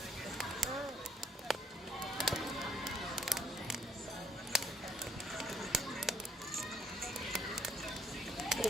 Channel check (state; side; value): normal; both; correlation 0.67